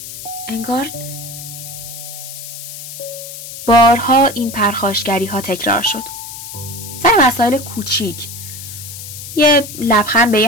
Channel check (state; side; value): noise; left; hiss, 11 dB below the sound